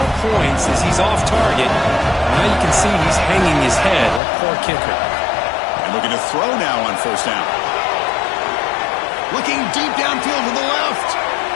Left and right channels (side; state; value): right; drops out; at 4.2 s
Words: points as he's off target. Now you can see he's hanging his head. Poor kicker. And looking to throw now on first down. Looking deep downfield to the left.